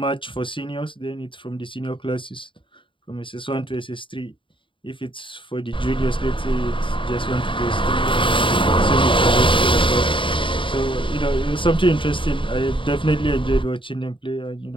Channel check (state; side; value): late; right; 0.25 ms